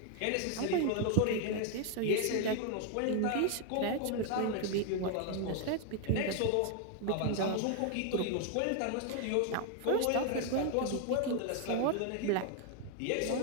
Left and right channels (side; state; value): both; different; correlation 0.00